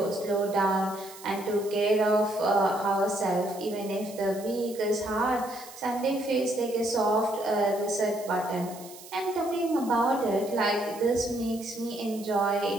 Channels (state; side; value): noise; right; hiss, 17 dB below the sound